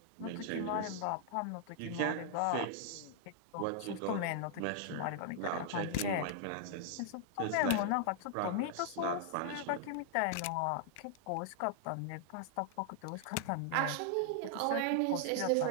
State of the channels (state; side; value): different; both; correlation -0.01